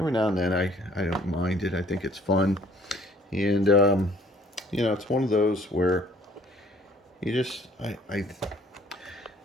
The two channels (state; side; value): normal; both; correlation 0.58